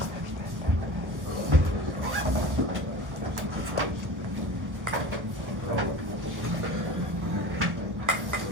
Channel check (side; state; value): left; late; 1.1 ms